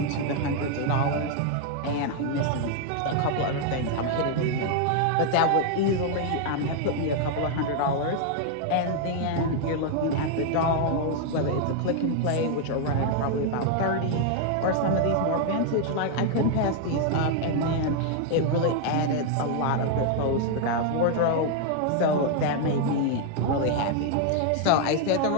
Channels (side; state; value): both; different; correlation 0.00